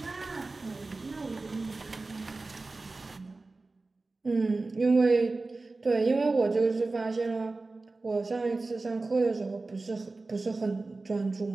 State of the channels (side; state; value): left; quieter; 3.4 dB